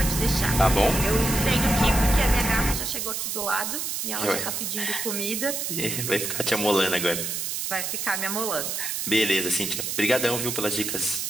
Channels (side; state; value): right; noise; hiss, 3 dB below the sound